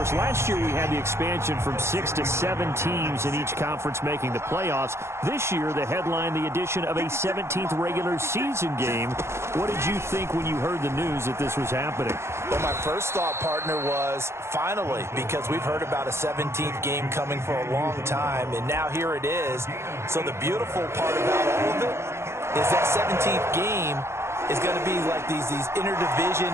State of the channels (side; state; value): left; late; 0.13 ms